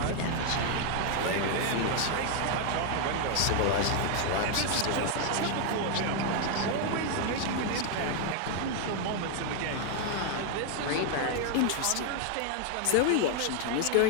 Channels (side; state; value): both; different; correlation 0.00